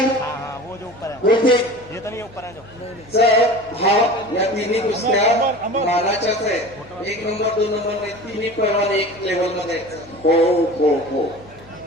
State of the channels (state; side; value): normal; both; correlation 0.37